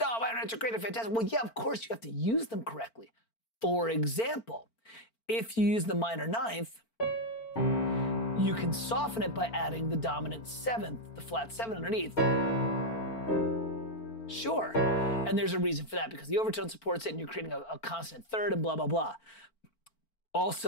oh, minor ninths are great and fantastic. Well, yeah, of course, you have to use them correctly. For example, if you use the minor ninth, you can soften it by adding the dominant seventh, the flat seven underneath. Sure, and there's a reason for that, because the overtone supports it and you're creating a consonant third and blah, blah, blah.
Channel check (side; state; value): right; late; 4.4 ms